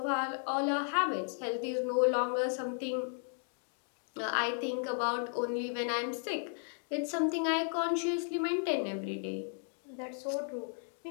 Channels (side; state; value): right; silent; 55 dB below the other